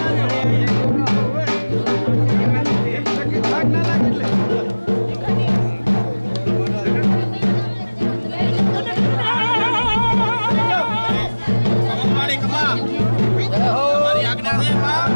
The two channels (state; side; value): inverted; both; correlation -1.00